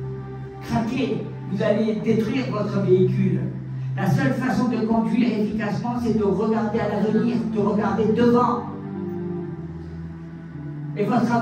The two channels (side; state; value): both; identical; correlation 1.00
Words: craquer, vous allez détruire votre véhicule. La seule façon de conduire efficacement, c'est de regarder à l'avenir, de regarder devant. Et votre